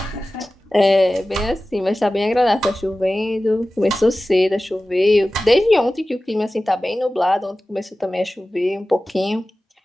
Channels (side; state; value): both; normal; correlation 0.96